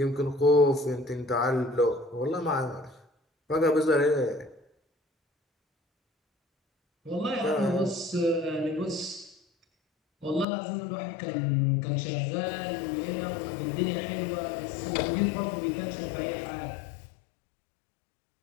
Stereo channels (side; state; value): right; drops out; at 10.5 s